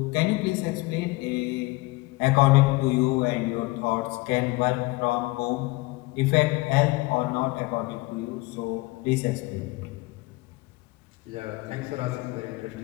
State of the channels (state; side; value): quieter; right; 22.5 dB